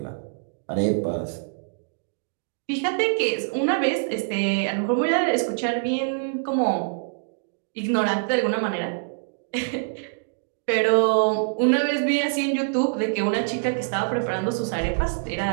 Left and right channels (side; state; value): left; silent; digital silence